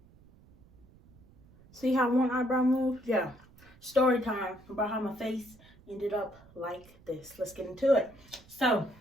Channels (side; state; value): right; noise; rumble, 25 dB below the sound